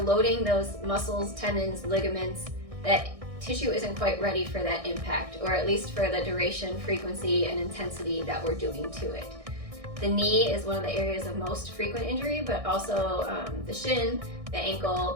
loading those muscles, tendons, ligaments, that tissue isn't quite ready for that impact, or at least for the duration, frequency, and intensity that we're doing to it. The knee is one of the areas of most frequent injury, but also the shin, the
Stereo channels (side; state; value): left; late; 1.6 ms